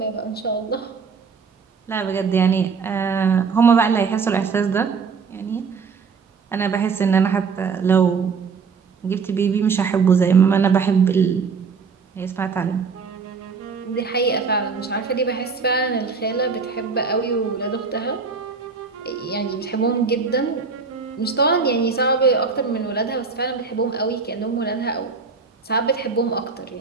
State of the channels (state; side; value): quieter; left; 5.2 dB